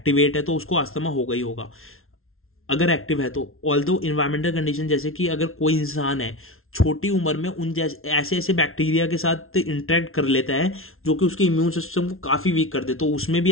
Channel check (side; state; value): right; late; 0.62 ms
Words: है तो उसको अस्थमा होगा ही होगा, अगर एक्टिव है तो। ऑल्दो इन्वायरमेंटल कंडीशन, जैसे कि अगर कोई इंसान है छोटी उम्र में उन जैसे ऐसे ऐसे बैक्टीरिया के साथ इंटरेक्ट कर लेता है जो कि उसके इम्यून सिस्टम को काफ़ी वीक कर दे, तो उसमें भी